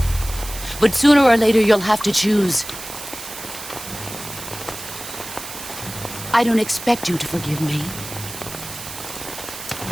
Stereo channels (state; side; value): noise; right; hiss, 11 dB below the sound